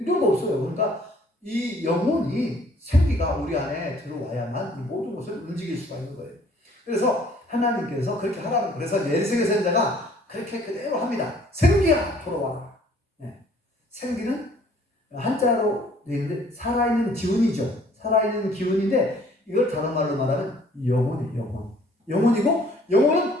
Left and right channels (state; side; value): normal; both; correlation 0.58